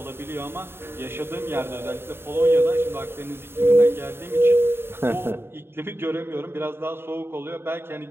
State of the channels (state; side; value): late; left; 0.11 ms